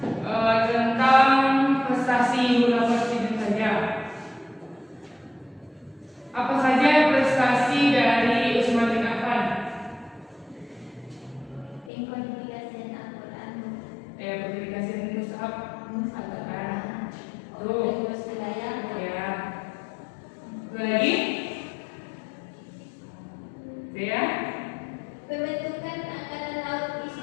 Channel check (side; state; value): right; drops out; at 11.9 s